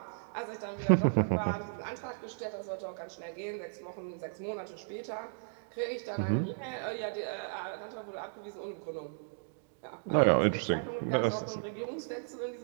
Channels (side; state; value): left; silent; digital silence